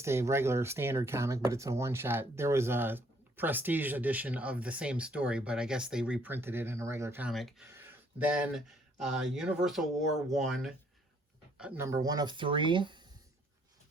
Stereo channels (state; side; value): normal; both; correlation 0.65